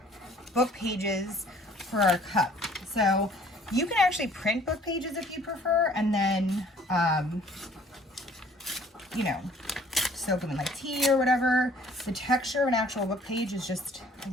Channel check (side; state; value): both; normal; correlation 0.56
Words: book pages for our cup. So you can actually print book pages if you prefer, and then, you know, soak them in like tea or whatever. The texture of an actual book page is just a